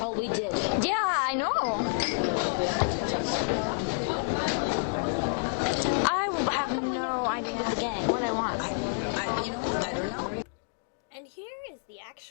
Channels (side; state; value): right; silent; digital silence